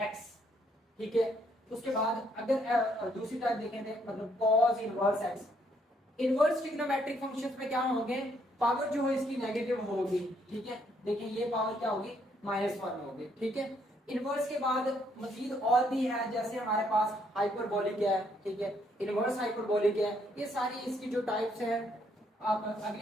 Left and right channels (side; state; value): both; normal; correlation 0.70